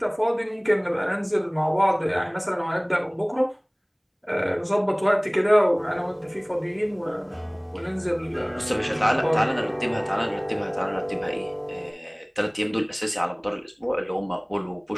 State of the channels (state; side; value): identical; both; correlation 1.00